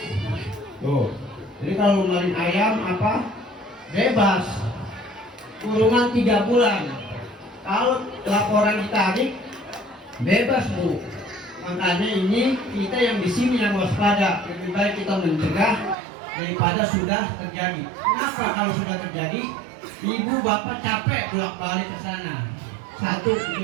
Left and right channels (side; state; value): left; drops out; at 16.0 s